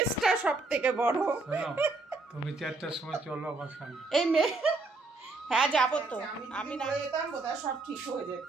সব থেকে বড়। তুমি 4টার সময় চলো আমার সামনে। এই মেয়ে, হ্যাঁ যাবো তো। আমি না যেতাম বোধহয় সব ঠিক হয়ে যেত,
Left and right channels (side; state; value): left; quieter; 3.5 dB